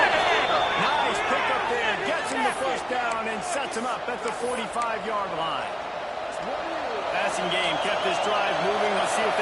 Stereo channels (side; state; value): both; identical; correlation 1.00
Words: Nice pick up there. Gets him the first down and sets him up at the 45-yard line. Passing game kept this drive moving. Let's see if